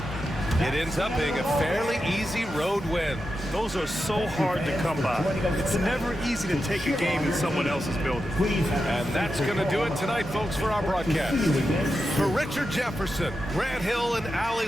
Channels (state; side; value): normal; both; correlation 0.89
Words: It ends up being a fairly easy road win. Those are so hard to come by. It's never easy to take a game in someone else's building. And that's going to do it tonight, folks, for our broadcast. For Richard Jefferson, Grant Hill, and Allie